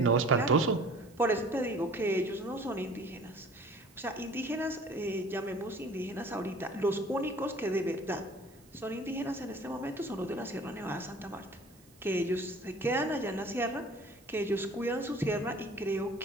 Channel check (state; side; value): noise; right; hiss, 28 dB below the sound